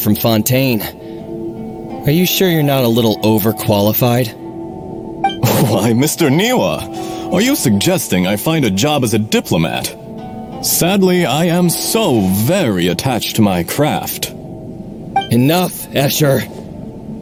Fontaine. Are you sure you're not a little overqualified? Why, Mr. Niwa, are you suggesting I find a job as a diplomat? Sadly, I am so very attached to my craft. Enough, Escher.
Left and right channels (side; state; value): both; identical; correlation 1.00